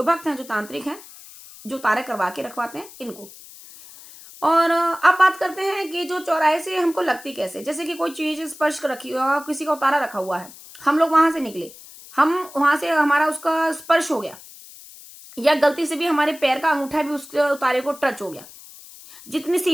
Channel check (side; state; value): left; noise; hiss, 19 dB below the sound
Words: भक्त हैं, जो तांत्रिक हैं, जो उतारे करवा के रखवाते हैं इनको। और अब बात करते हैं कि जो चौराहे से हमको लगती कैसे। जैसे कि कोई चीज स्पर्श रखी हुआ, किसी का उतारा रखा हुआ है, हम लोग वहां से निकले, हम वहां से हमारा उसका स्पर्श हो गया, या गलती से भी हमारे पैर का अंगूठा भी उसके उतारे को टच हो गया, जितनी